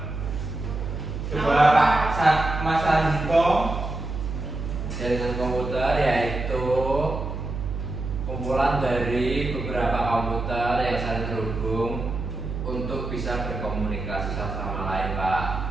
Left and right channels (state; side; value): noise; right; hum, 5 dB below the sound